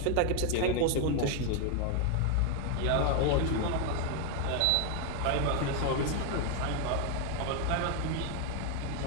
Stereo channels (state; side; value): different; both; correlation 0.00